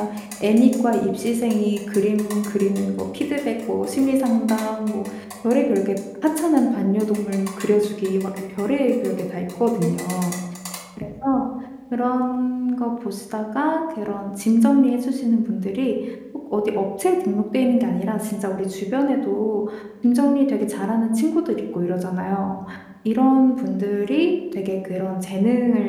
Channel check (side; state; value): both; identical; correlation 1.00